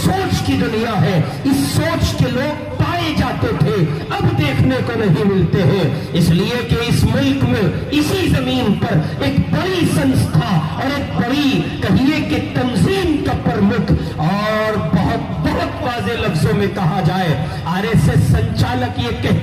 سوچ کی دنیا ہے۔ اس سوچ کے لوگ پائے جاتے تھے، اب دیکھنے کو نہیں ملتے ہیں، اس لیے کہ اس ملک میں اسی زمین پر ایک بڑی سنستھا اور ایک بڑی کہیے کہ تنظیم کا پرمکھ اور بہت واضح لفظوں میں کہا جائے آر ایس ایس سنچالک یہ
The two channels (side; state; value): both; identical; correlation 1.00